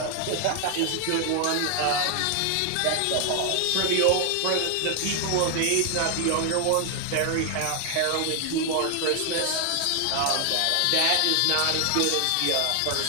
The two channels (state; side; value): different; both; correlation 0.00